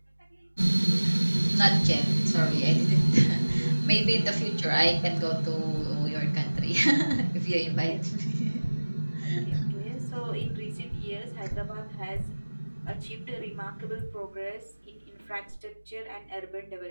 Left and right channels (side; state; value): both; inverted; correlation -1.00